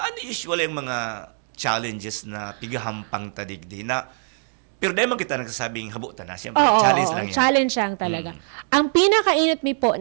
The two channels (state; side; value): silent; left; 63 dB below the other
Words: usually ang mga challenges na pigahampang tadigdi na pero dahil man kita nagsasabing habutan na, siyempre, challenge lang yan. Challenge lang talaga. Ang pinakainit mi po